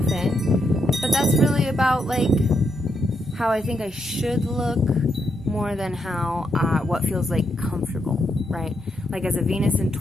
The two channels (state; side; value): normal; both; correlation 0.80